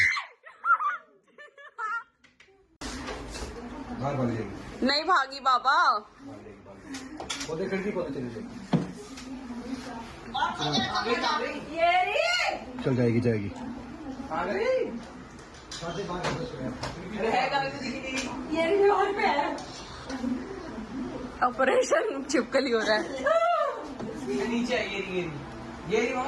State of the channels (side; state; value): both; identical; correlation 1.00